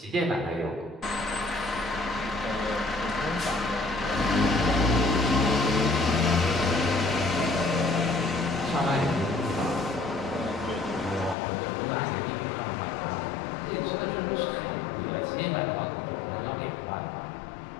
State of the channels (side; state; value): right; drops out; at 11.4 s